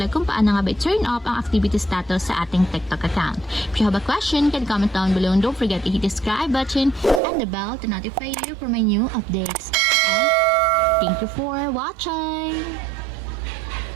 kung paano nga ba turn off ang activity status sa ating TikTok account. If you have a question, can comment down below and don't forget to hit the subscribe button and the bell to notify you for my new updates. And thank you for watching!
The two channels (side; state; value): left; drops out; at 7.2 s